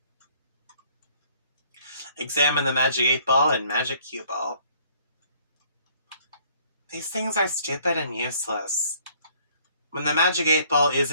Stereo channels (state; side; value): inverted; both; correlation -0.60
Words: Examine the Magic 8 Ball and Magic Cue Ball. These things are stupid and useless. When the Magic 8 Ball